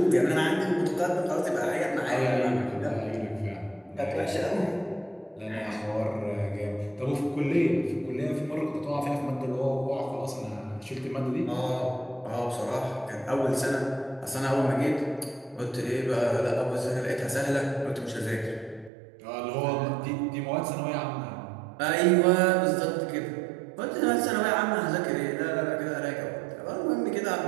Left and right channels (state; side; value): drops out; left; at 18.9 s